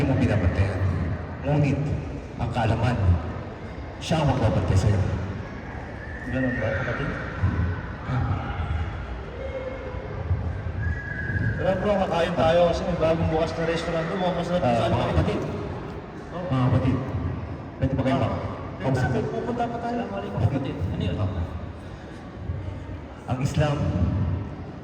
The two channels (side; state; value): both; identical; correlation 1.00